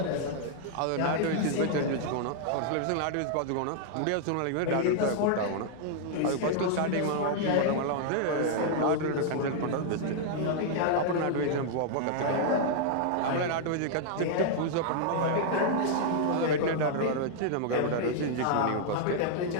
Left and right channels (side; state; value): both; different; correlation -0.01